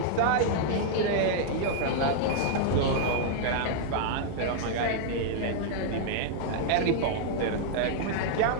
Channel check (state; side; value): different; both; correlation -0.01